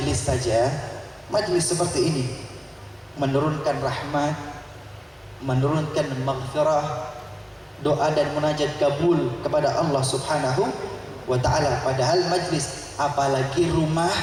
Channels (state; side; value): identical; both; correlation 1.00